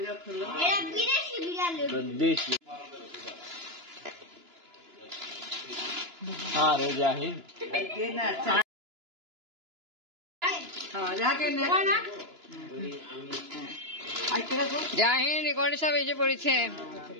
দেশি। আরে জাহিদ, জাহিদ রেকর্ডে সব এসে পড়েছে।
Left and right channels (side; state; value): left; late; 2.9 ms